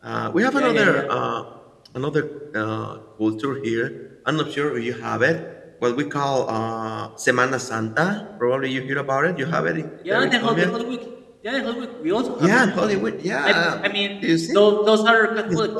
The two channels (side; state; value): both; identical; correlation 1.00